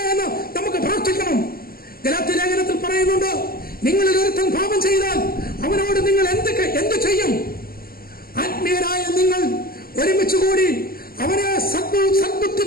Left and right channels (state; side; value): late; right; 0.43 ms